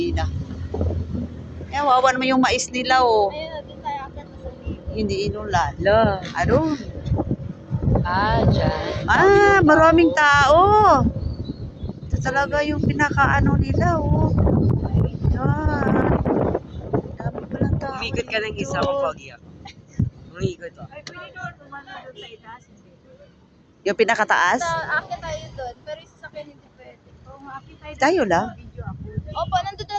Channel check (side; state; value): both; identical; correlation 1.00